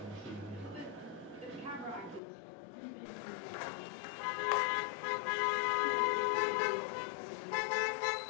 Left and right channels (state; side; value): drops out; right; at 2.2 s